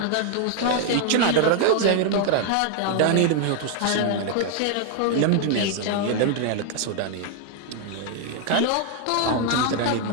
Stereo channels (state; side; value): different; both; correlation 0.00